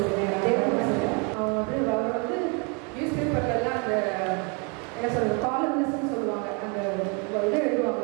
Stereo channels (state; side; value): quieter; left; 34.2 dB